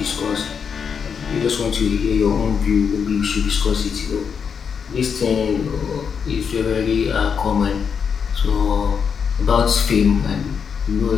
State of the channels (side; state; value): right; quieter; 6.6 dB